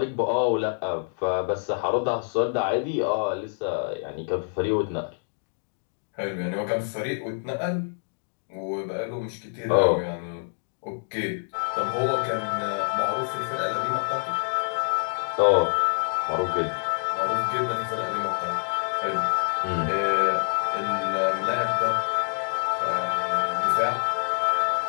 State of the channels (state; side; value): silent; right; digital silence